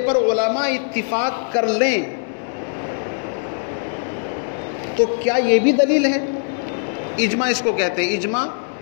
پر علماء اتفاق کر لیں تو کیا یہ بھی دلیل ہے؟ اجماع اس کو کہتے ہیں، اجماع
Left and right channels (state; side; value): silent; right; digital silence